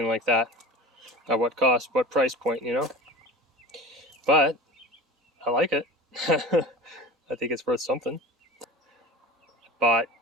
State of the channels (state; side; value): normal; both; correlation 0.35